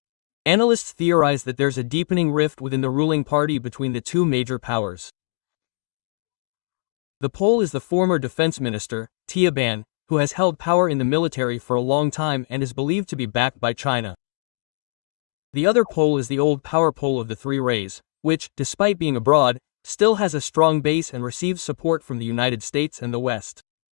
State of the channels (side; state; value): right; silent; digital silence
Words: Analysts theorize that there's a deepening rift within the ruling party between the two major powers. The Pole is the former defense minister, Tia Ban, who has held power in the military for a long time and is believed to be backed by China. The other pole is the old power pole of the Three Rays, which, despite being abroad, still has a strong base and receives support from the United States and the West.